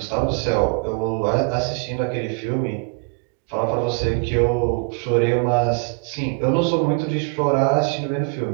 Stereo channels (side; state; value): left; quieter; 34.3 dB